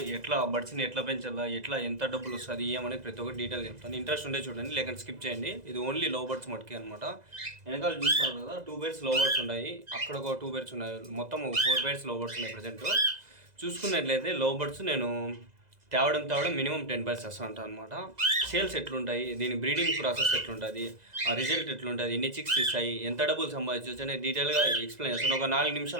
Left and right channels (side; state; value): left; late; 2.0 ms